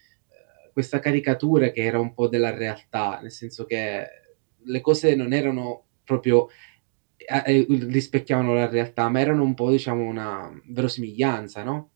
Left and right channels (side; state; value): left; silent; digital silence